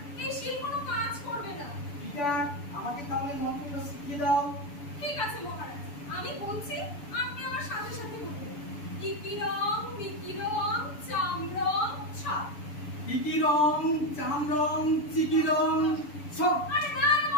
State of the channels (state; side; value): late; right; 7.0 ms